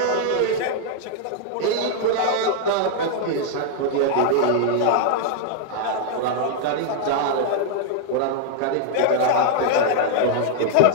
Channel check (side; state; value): both; different; correlation -0.01